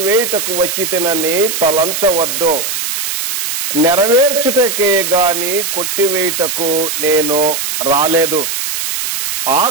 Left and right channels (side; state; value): right; noise; hiss, 3 dB below the sound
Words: వచ్చితినని తలంచవద్దు, నెరవేర్చుటకే గాని కొట్టివేయుటకు నేను రాలేదు.